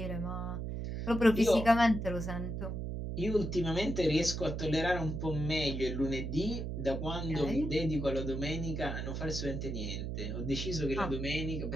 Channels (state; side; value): noise; right; hum, 4 dB below the sound